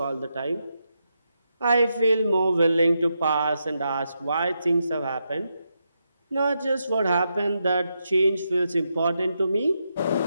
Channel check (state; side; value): inverted; both; correlation -0.84